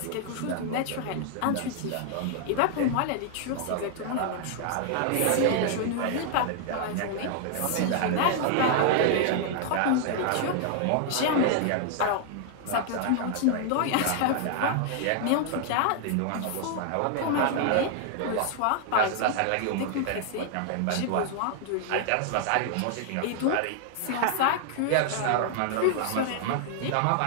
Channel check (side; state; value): both; different; correlation 0.00